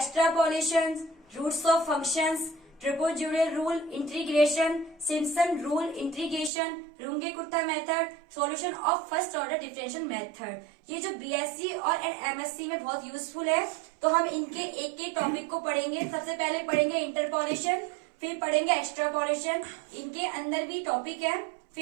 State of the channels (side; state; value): left; drops out; at 6.5 s